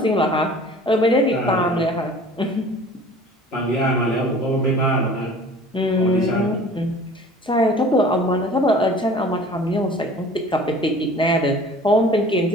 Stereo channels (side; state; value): both; normal; correlation 0.46